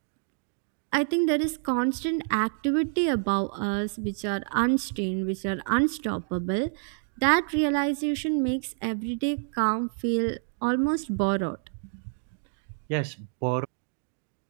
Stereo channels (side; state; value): left; silent; digital silence